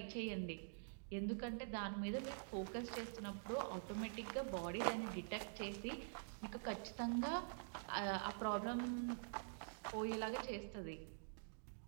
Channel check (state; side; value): silent; left; digital silence